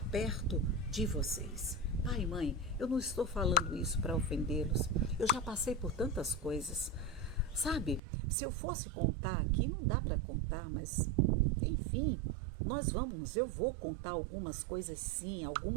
perto de vocês. Pai e mãe, eu não estou falando isso para ofendê-los, eu já passei por tantas coisas. Sabe, se eu fosse contar aqui, não dá para contar, mas enfim, eu vou contar algumas coisas sim,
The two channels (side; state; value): left; drops out; at 8.0 s